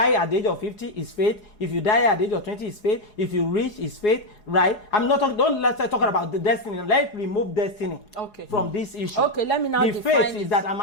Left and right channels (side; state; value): right; late; 4.8 ms